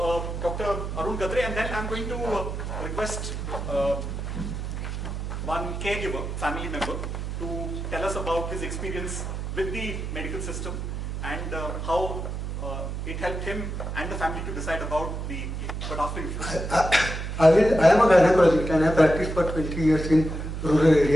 Dr. Arun Gadre, and then I'm going to request one caregiver, family member, to tell us about his experience with the medical system and how it helped him and the family to decide about the... But after you... I am a gynecologist and I practiced for 20 years in rural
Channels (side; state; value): right; noise; hum, 5 dB below the sound